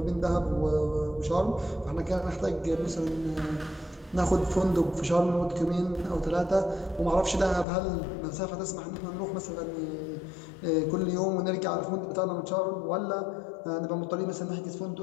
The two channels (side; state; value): right; drops out; at 7.7 s